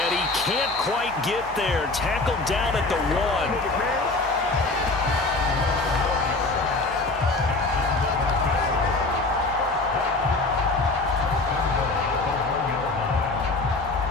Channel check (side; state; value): right; quieter; 3.2 dB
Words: he can't quite get there. Tackled down at the 1.